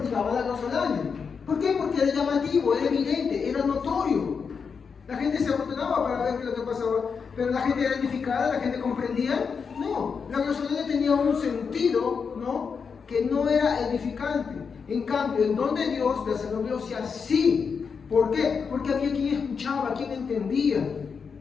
la glosolalia. ¿Por qué? Porque era llamativo, era evidente, era notorio. La gente se afortunaba para ver qué es lo que pasaba, pero la gente era edificada, la gente comprendía. No, la glosolalia tenía un sentido, ¿no?, que no era edificante. En cambio, el don de Dios de hacer la glosia sí. ¿Por qué? Porque había quien escuchaba, quien entendía.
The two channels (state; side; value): quieter; right; 5.8 dB